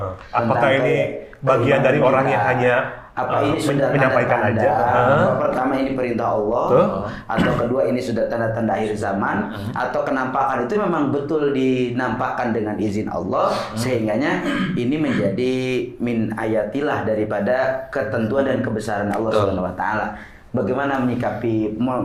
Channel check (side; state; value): both; identical; correlation 1.00